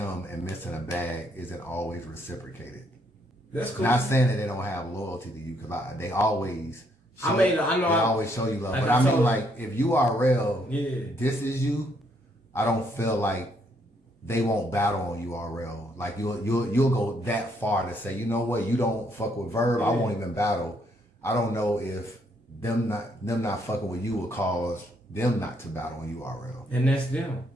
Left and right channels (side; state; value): both; normal; correlation 0.71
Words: and missing a bag isn't always reciprocated. That's cool. Not saying that they don't have loyalty to you, because they always show, I know. they always show you love. Like but I mean, like, if URL, this is you, I don't feel like they won't battle on URL. Like, you'll go that far to say, you know what, you don't fuck with Verb, I won't even battle. I don't know if them not fucking with you will cause them not to battle on URL. And that's them.